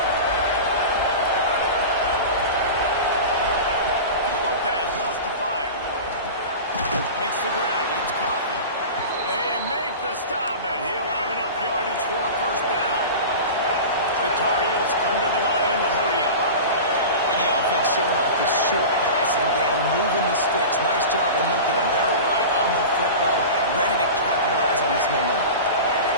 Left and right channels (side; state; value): both; inverted; correlation -0.31